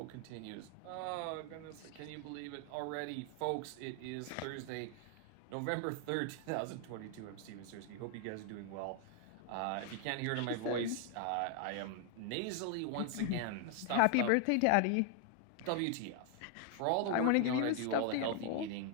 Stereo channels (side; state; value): both; different; correlation 0.00